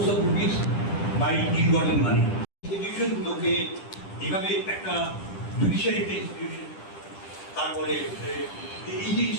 of rupees by ill gotten money. ইনস্টিটিউশনগুলোকে এভাবে একটা জুডিশিয়ারি একটা ইনস্টিটিউশন, তারপরে এই যে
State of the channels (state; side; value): late; right; 10 ms